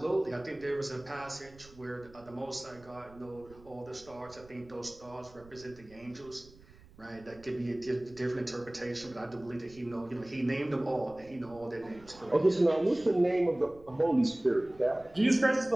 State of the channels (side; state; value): right; noise; rumble, 23 dB below the sound